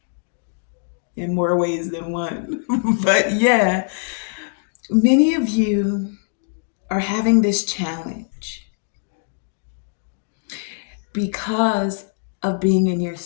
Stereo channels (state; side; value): silent; right; 64 dB below the other